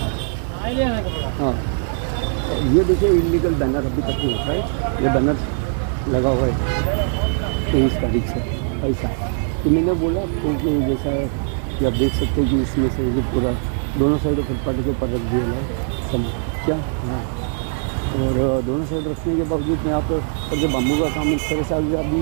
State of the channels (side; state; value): left; silent; 61 dB below the other